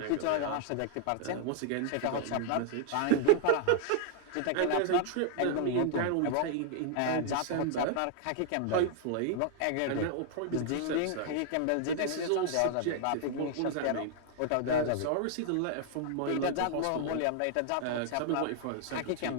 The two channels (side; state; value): both; different; correlation 0.00